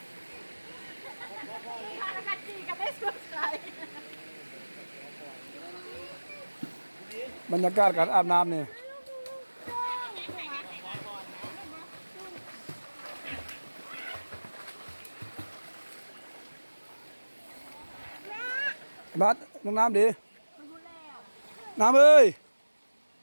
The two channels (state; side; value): inverted; both; correlation -1.00